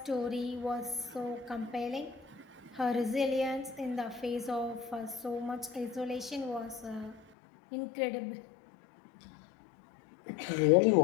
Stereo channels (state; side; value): drops out; right; at 7.2 s